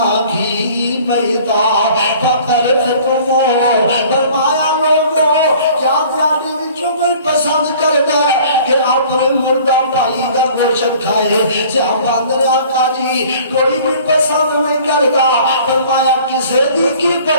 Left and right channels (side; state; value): both; inverted; correlation -0.50